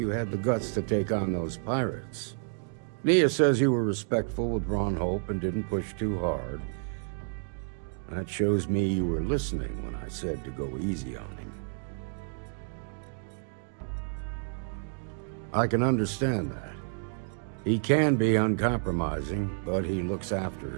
had the guts to take on those pirates. Nia says you were respectful with Ron Hope and didn't push too hard. That shows me you were listening when I said to go easy on him. I can understand that. He can be uncompromising, but he looks after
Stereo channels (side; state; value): left; silent; digital silence